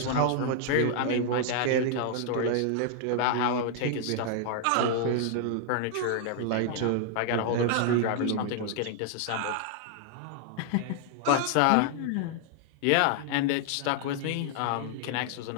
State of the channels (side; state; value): both; different; correlation 0.00